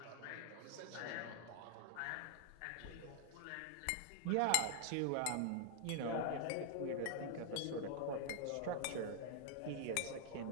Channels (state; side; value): different; both; correlation 0.00